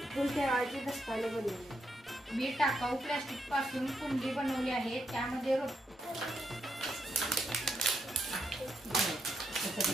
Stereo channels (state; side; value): normal; both; correlation 0.80